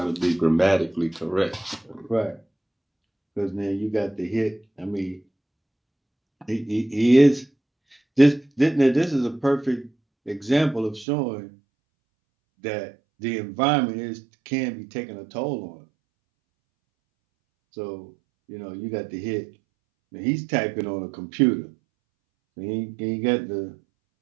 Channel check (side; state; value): left; drops out; at 11.1 s